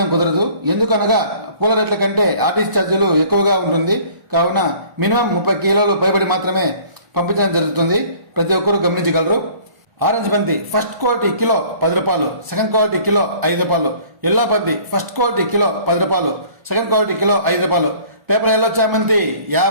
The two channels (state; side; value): late; left; 1.0 ms